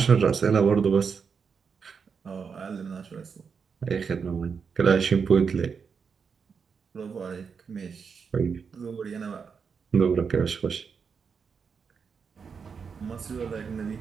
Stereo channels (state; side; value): quieter; left; 6.0 dB